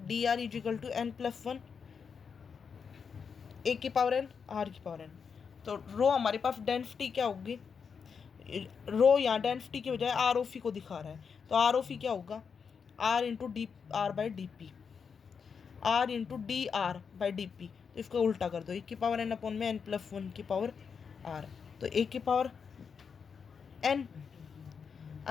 D R is equal to n plus 1 a की पावर n r की पावर n। तो रो हमारे पास डेंसिटी क्या होगी, रो यहाँ डेंसिटी की बजाय आर ओ फी को दिखा रहा है, तो आर ओ फी क्या होगा, r into d are by d p, r into d are by d p. तो इसको उल्टा कर दो, 1 की पावर n अपॉन में n प्लस 1 की पावर r, तो 1 की पावर n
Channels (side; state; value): right; quieter; 6.2 dB